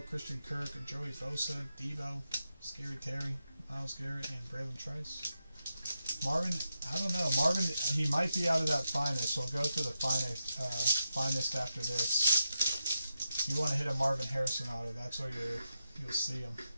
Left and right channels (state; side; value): inverted; both; correlation -0.87